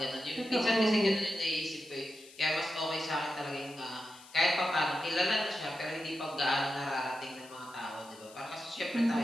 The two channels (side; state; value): left; noise; hiss, 21 dB below the sound